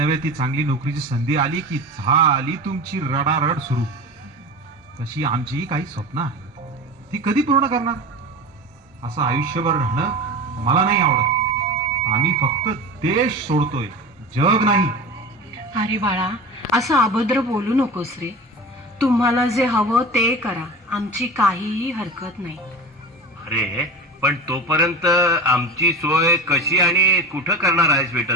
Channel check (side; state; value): both; normal; correlation 0.29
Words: ती चांगली नोकरीची संधी आली की झाली तुमची रडारड सुरू. तशी आमची काही स्वप्न आहेत, ती कधी पूर्ण करणार? असं आयुष्यभर राहणं मला नाही आवडत. आम्ही फक्त देश सोडतोय, जग नाही. अरे बाळा, असं अभद्र बोलू नकोस रे. तुम्हाला जे हवं ते करा, आमची काहीही हरकत नाही. अरे पण तोपर्यंत आमची सोय कशी आणि कुठं करणार आहेस बेटा